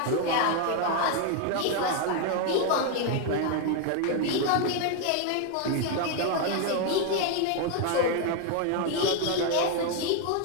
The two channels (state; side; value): different; both; correlation 0.01